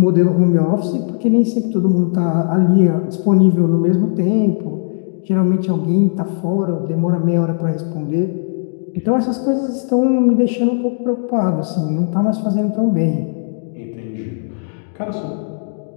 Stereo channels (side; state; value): right; silent; digital silence